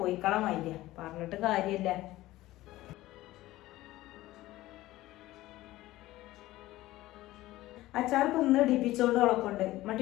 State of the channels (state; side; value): quieter; right; 16.7 dB